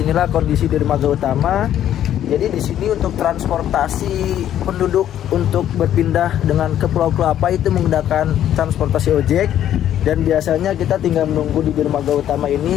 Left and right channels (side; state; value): right; quieter; 11.1 dB